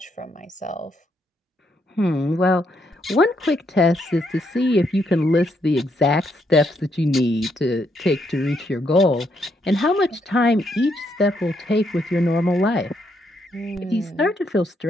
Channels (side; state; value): both; normal; correlation 0.76